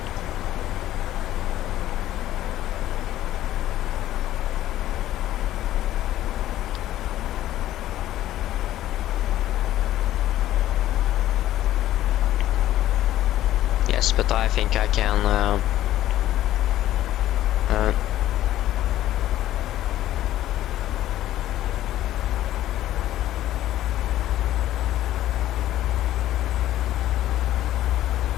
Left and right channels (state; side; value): quieter; right; 13.5 dB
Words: Yes, but I think I can